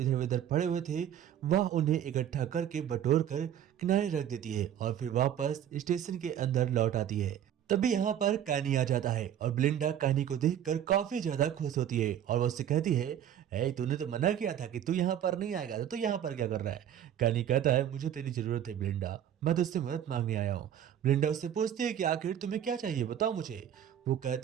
उधर पड़े हुए थे वह उन्हें इकट्ठा करके बटोर कर किनारे रख देती है और फिर वापस स्टेशन के अंदर लौट आती है। तभी यहाँ पर कानी आ जाता है और ब्लिंडा कानी को देखकर काफी ज्यादा खुश होती है और वो उससे कहती है, ए तूने तो मना किया था कि तू यहाँ पर नहीं आएगा, तो तू यहाँ पर क्या कर रहा है। कानी कहता है, मुझे तेरी जरूरत है ब्लिंडा, मैं तुझसे मदद मांगने आया हूँ। ब्लिंडा उससे पूछती है कि आखिर तुम्हें क्या चाहिए, बताओ मुझे। वो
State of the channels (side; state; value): left; quieter; 10.2 dB